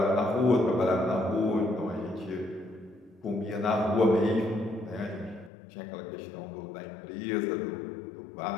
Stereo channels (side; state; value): right; drops out; at 5.5 s